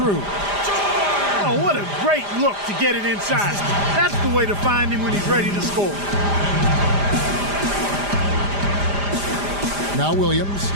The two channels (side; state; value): left; late; 5.0 ms